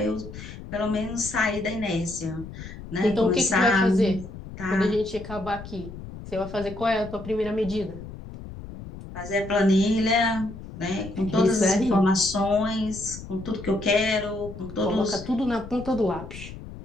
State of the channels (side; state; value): left; noise; rumble, 12 dB below the sound